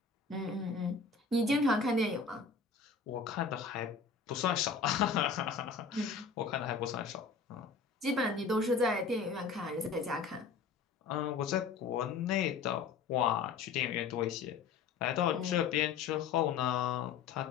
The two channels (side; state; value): right; quieter; 5.2 dB